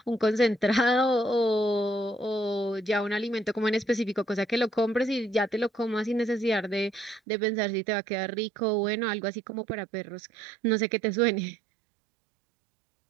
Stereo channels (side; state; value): left; drops out; at 7.2 s